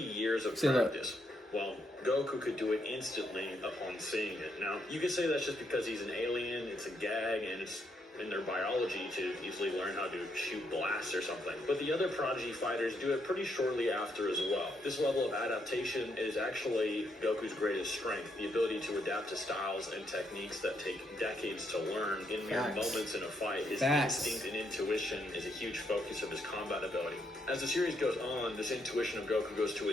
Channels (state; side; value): normal; both; correlation 0.77